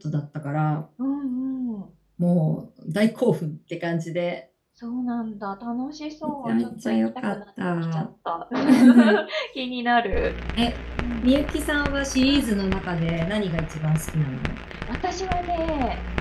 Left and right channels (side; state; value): both; identical; correlation 1.00